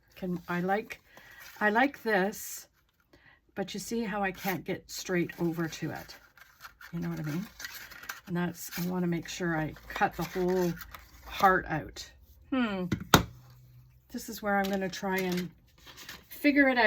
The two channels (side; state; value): both; identical; correlation 1.00